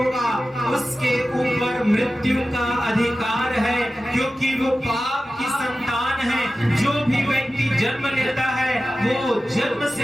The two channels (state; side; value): normal; both; correlation 0.94